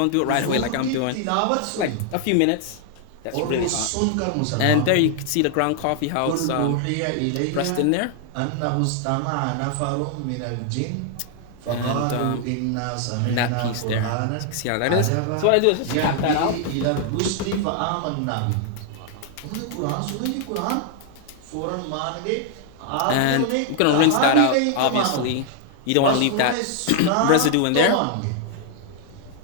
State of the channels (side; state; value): both; different; correlation 0.00